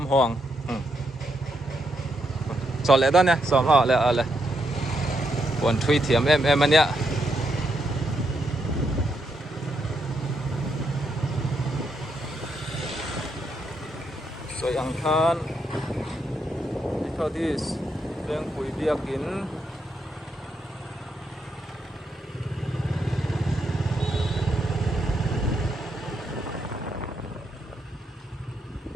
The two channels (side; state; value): both; normal; correlation 0.79